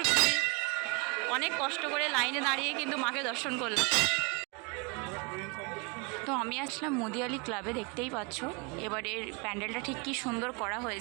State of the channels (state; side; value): quieter; left; 31.5 dB